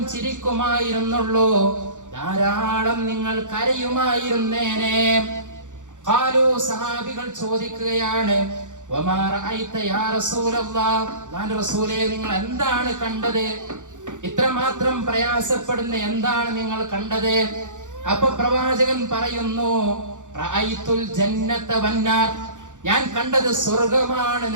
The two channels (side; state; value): left; late; 0.86 ms